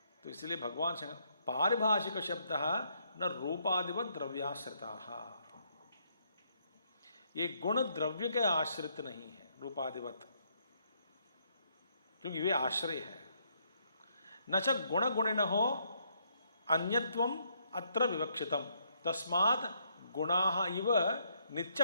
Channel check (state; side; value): inverted; both; correlation -0.73